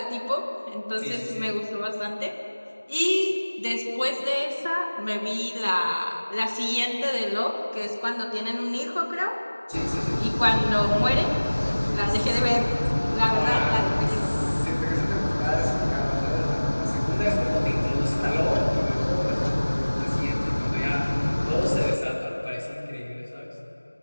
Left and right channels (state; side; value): inverted; both; correlation -1.00